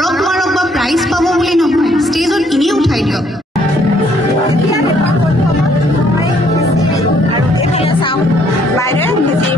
মাৰক বা প্ৰাইজ পাব বুলি নহয় ষ্টেজত এনেই উঠাই দিয়ক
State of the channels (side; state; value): both; normal; correlation 0.66